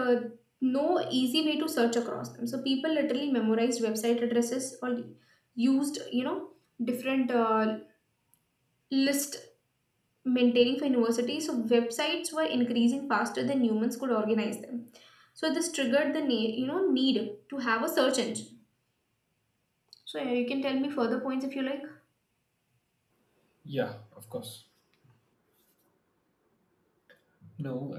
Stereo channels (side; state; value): both; identical; correlation 1.00